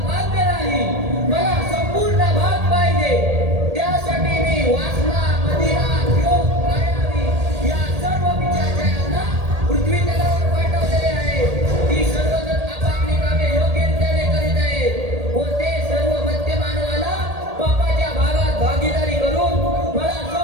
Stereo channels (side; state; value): left; late; 1.8 ms